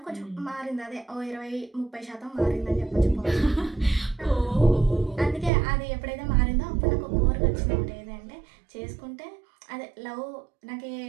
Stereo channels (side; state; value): left; drops out; at 5.5 s